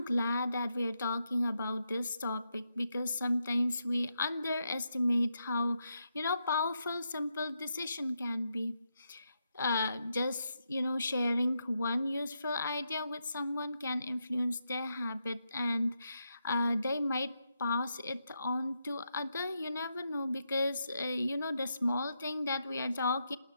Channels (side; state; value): both; inverted; correlation -0.83